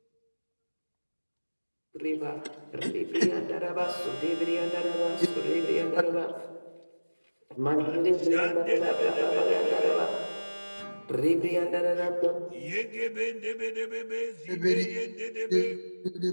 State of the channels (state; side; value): inverted; both; correlation -1.00